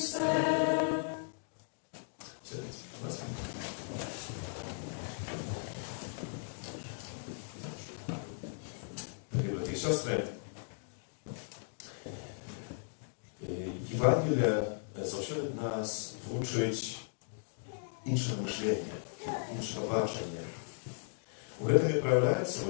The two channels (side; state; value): right; silent; digital silence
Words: Дорогі брати і сестри, Євангелія завжди нас вчить іншого мишлення, іншого бачення. У гэтым і проявляецца,